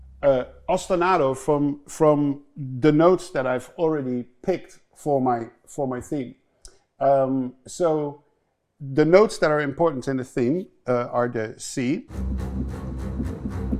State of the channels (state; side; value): identical; both; correlation 1.00